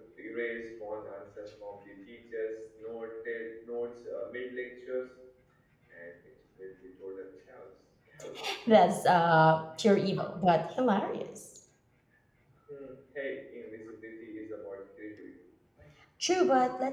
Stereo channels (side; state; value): both; identical; correlation 1.00